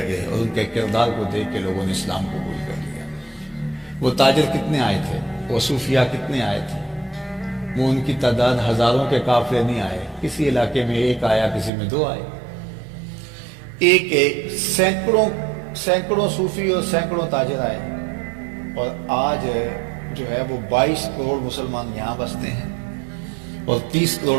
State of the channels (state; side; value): drops out; left; at 11.7 s